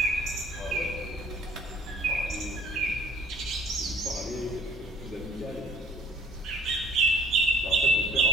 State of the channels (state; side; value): normal; both; correlation 0.53